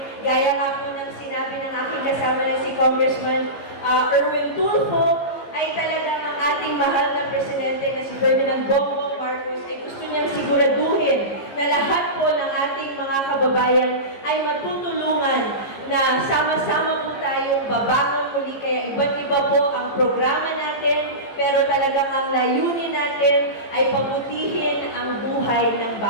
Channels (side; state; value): right; late; 15 ms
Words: Gaya nga po ng sinabi ng aking kasama na si Congressman Erwin Tulfo, ay talagang ang ating mahal na presidente na si Ferdinand Bongbong Marcos ay gusto niyang siguraduhin na lahat po ng ating mga kababayan ay matutulungan na sama-sama po tayong babangon muli. Kaya iba't iba po ang programa natin, pero talagang ang layunin natin ay pabutihin ang buhay ng